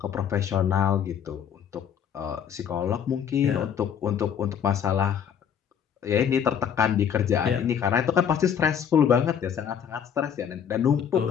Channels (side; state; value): right; quieter; 8.3 dB